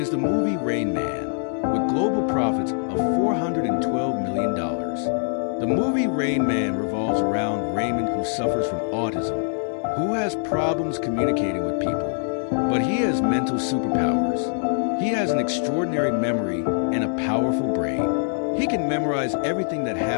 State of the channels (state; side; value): silent; right; digital silence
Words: the movie Rain Man, with global profits of $412 million. The movie Rain Man revolves around Raymond, who suffers from autism, who has problems communicating with people, but he has mental superpowers. He has an extraordinary memory and a powerful brain. He can memorize everything that